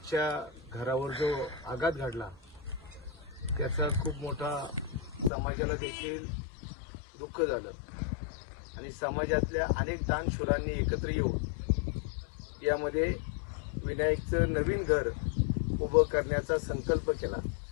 घरावर जो आघात घडला त्याचा खूप मोठा समाजाला देखील दुःख झालं आणि समाजातल्या अनेक दानशूरांनी एकत्र येऊन यामध्ये विनायकचं नवीन घर उभं करण्याचा संकल्प केला.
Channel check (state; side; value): drops out; right; at 5.3 s